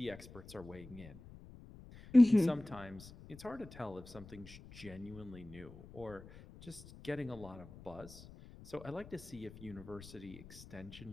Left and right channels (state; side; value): noise; left; rumble, 17 dB below the sound